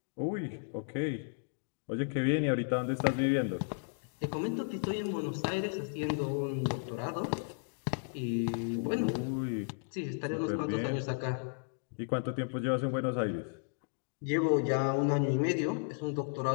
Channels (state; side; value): silent; right; digital silence